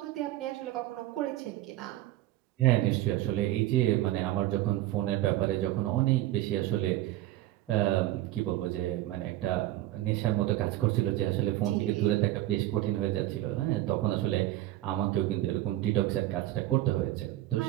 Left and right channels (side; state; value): left; quieter; 15.2 dB